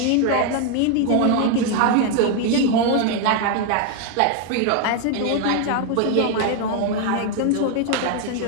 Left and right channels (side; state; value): both; different; correlation 0.01